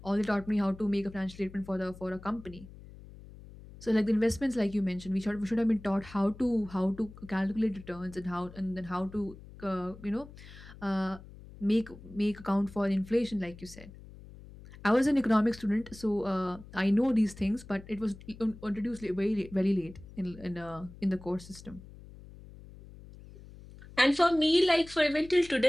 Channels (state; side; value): noise; left; hum, 18 dB below the sound